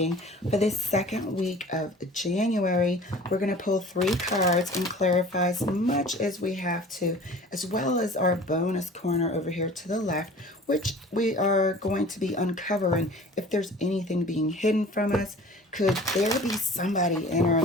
for this second week of January. We're going to pull 3 cards and clarify as much as we have to, as well as our bonus corner over here to the left, which we are going to be uncovering if there's anything being hidden from us. Could there be somebody in our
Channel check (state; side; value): normal; both; correlation 0.44